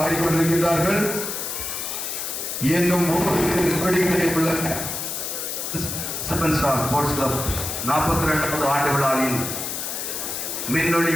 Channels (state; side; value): noise; left; hiss, 4 dB below the sound